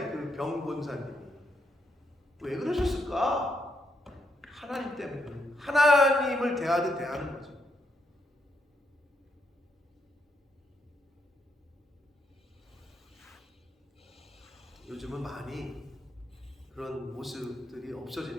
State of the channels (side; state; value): both; normal; correlation 0.78